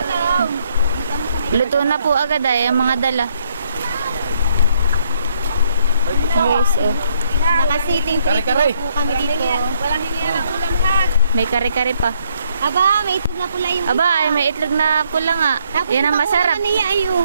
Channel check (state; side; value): inverted; both; correlation -0.71